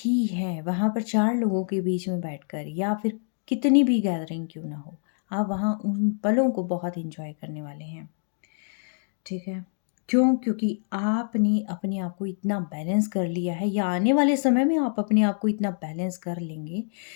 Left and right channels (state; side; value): silent; right; 61 dB below the other